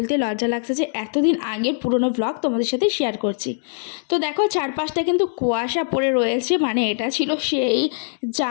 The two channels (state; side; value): silent; right; digital silence